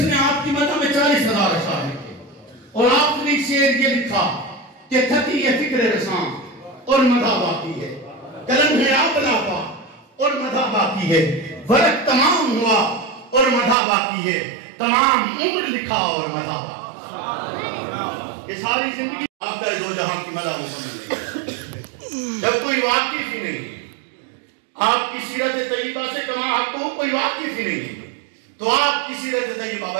آپ کی مدح میں 40,000 اشعار لکھے اور آپ نے شعر یہ لکھا کہ تھکی ہے فکر رساں اور مدح باقی ہے، قلم ہے آپ لاپا اور مدح باقی ہے، ورق تمام ہوا اور مدح باقی ہے، تمام عمر لکھا اور مدح باقی۔ یہ ساری زندگی آپ کا دو جہاں کی مدح مکمل نہیں، جب کوئی واقف ہی نہیں آپ کی سیرت طیبہ سے کما حق کو کوئی واقف ہی نہیں تو آپ کی سیرت طیبہ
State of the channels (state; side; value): drops out; left; at 13.8 s